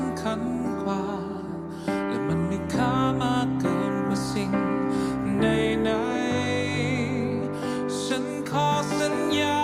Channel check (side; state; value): both; identical; correlation 1.00